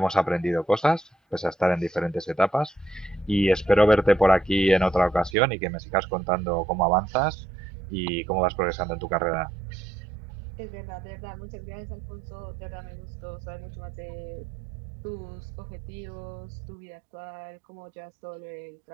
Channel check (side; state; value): left; drops out; at 5.4 s